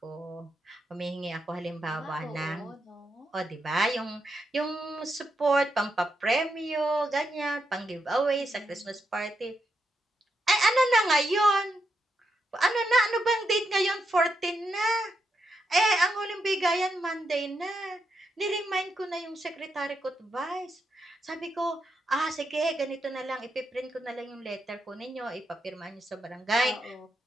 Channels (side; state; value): both; normal; correlation 0.83